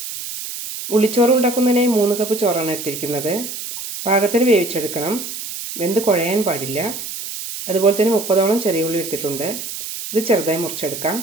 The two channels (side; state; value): right; noise; hiss, 8 dB below the sound